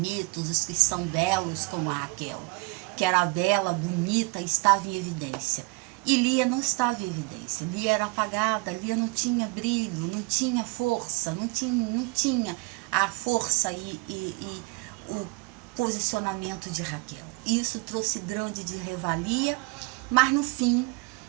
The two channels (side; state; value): left; quieter; 27.5 dB